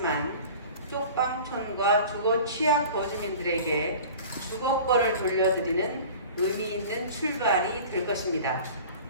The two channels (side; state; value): both; inverted; correlation -0.41